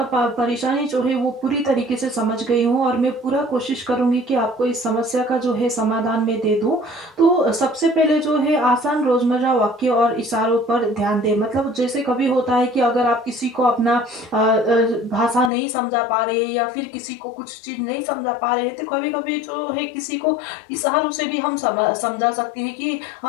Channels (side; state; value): right; drops out; at 15.5 s